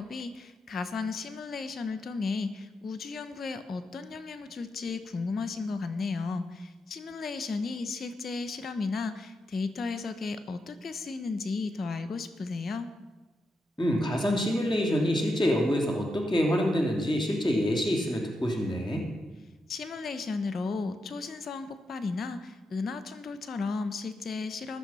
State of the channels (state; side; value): normal; both; correlation 0.85